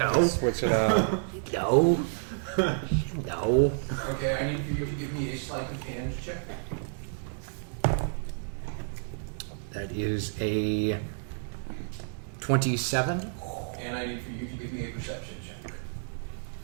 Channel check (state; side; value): silent; left; digital silence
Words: switch it up. no, no. Okay, I need for you to give me a sleight of hand check. That is a 27. And I need for you to give me a perception check.